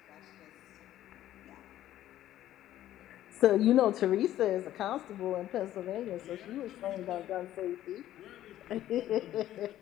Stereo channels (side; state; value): right; quieter; 13.0 dB